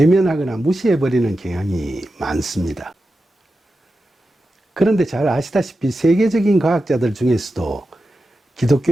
무시해버리는 경향이 많습니다. 그런데 잘 아시다시피 세계적인 과학자들 중에서도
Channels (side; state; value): both; normal; correlation 0.91